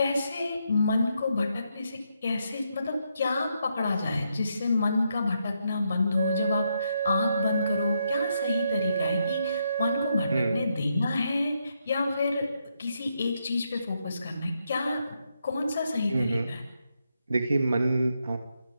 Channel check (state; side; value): inverted; both; correlation -0.80